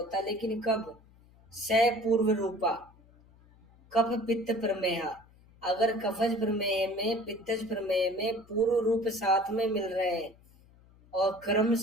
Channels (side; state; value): left; noise; hum, 27 dB below the sound